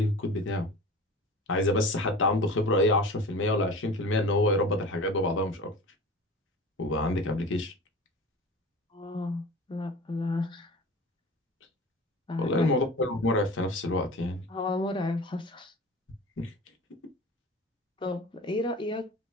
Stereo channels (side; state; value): both; normal; correlation 0.37